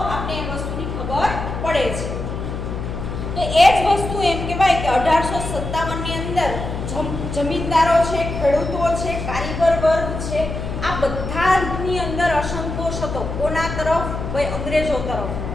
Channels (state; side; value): noise; left; hum, 5 dB below the sound